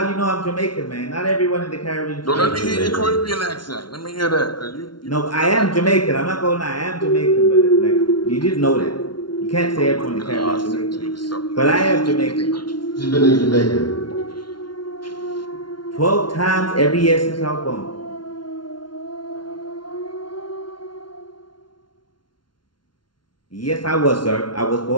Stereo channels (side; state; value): right; late; 0.71 ms